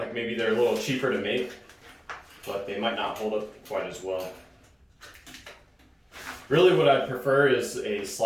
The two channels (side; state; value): both; identical; correlation 1.00